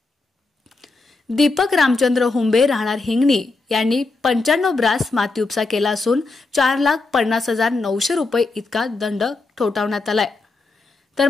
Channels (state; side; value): quieter; right; 3.6 dB